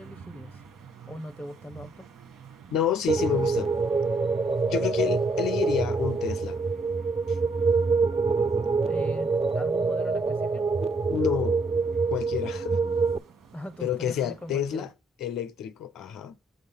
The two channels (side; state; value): both; normal; correlation 0.68